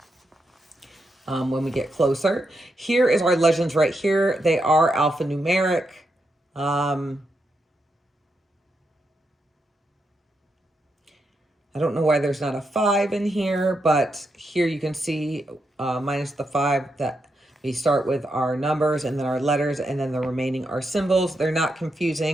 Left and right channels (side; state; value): both; normal; correlation 0.83